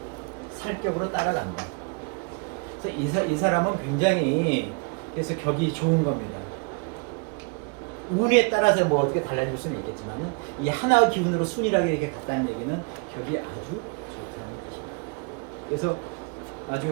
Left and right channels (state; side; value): quieter; left; 34.8 dB